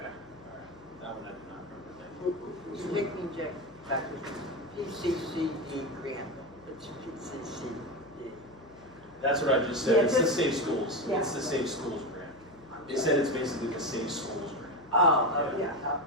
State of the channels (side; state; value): left; noise; hum, 24 dB below the sound